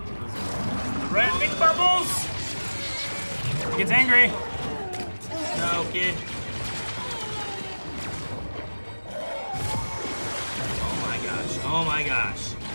Red big bubbles! He gets angry. No, kid. Oh my gosh.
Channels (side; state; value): both; inverted; correlation -1.00